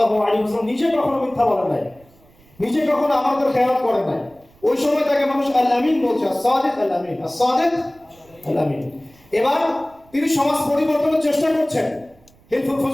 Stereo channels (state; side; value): noise; right; rumble, 29 dB below the sound